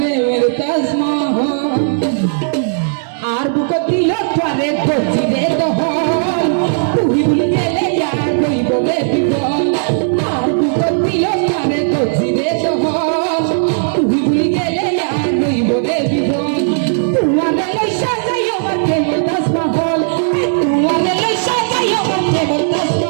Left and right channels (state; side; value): silent; left; digital silence